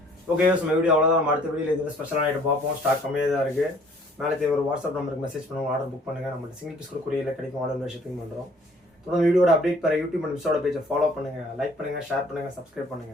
Okay, நம்ம வீடியோ அவ்வளோதான். நம்ம அடுத்த வீடியோவில் இது ஸ்பெஷலான ஐட்டம் பார்ப்போம். ஸ்டாக் கம்மியாக தான் இருக்குது. மேலே ஒரு வாட்ஸ்அப் நம்பருக்கு மெசேஜ் பண்ணுவோம், ஆர்டர் புக் பண்ணுங்கள். நம்ம சிங்கிள் பீஸ் கூட கொரியரில் கிடைக்கும். ஆர்டர் ஷிப்பிங் பண்ணுறோம். தொடர்ந்து வீடியோட அப்டேட் பெற யூடியூப் அண்ட் மிஸ்ஸோட பேஜை ஃபாலோ பண்ணுங்கள், லைக் பண்ணுங்கள், ஷேர் பண்ணுங்கள், சப்ஸ்கிரைப்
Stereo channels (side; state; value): both; normal; correlation 0.57